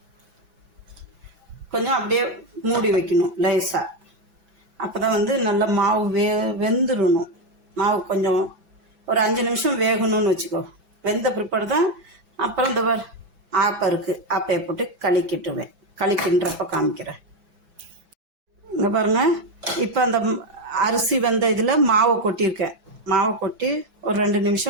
அப்படியே மூடி வைக்கணும் லேசாக. அப்போ தான் நல்லா மாவு வெந்துடணும். மாவு கொஞ்சம் ஒரு 5 நிமிஷம் வேகணும்னு வச்சுக்கோ. வெந்த பிற்பாடு தான் அப்புறம் இந்த ஆப்பை இருக்குது, ஆப்பையை போட்டு களிக்கிட்டுவேன். களிக்கின்றப்ப காமிக்கிறேன். இங்கே பாருங்கள், இப்போ அந்த அரிசி வெந்த இதில் மாவை கொட்டியிருக்கேன். மாவை கொட்டி ஒரு 2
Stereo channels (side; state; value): left; late; 6.0 ms